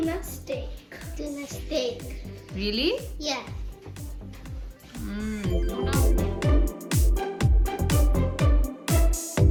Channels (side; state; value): both; identical; correlation 1.00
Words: steak. Tuna steak. Really? Yeah.